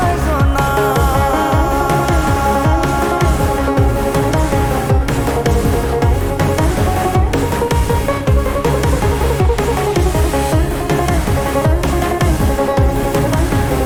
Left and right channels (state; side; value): identical; both; correlation 1.00